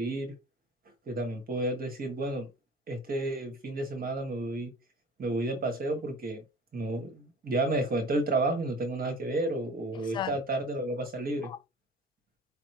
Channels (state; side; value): normal; both; correlation 0.43